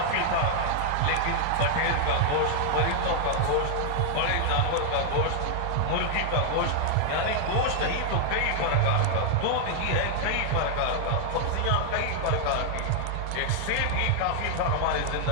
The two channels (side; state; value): both; different; correlation 0.00